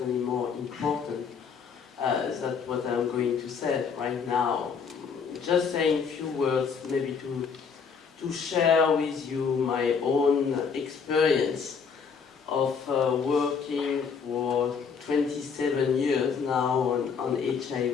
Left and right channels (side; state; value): right; quieter; 6.0 dB